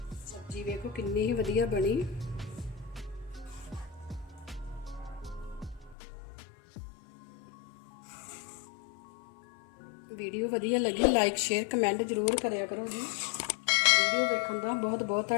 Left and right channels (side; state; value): right; drops out; at 6.0 s